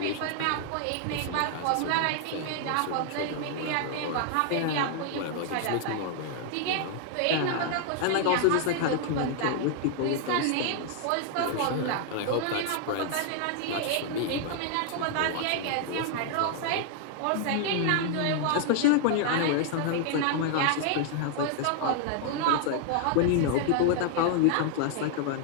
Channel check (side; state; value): both; different; correlation 0.00